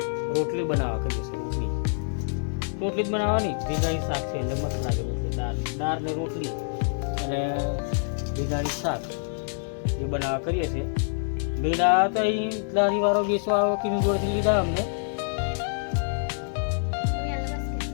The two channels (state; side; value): silent; right; 57 dB below the other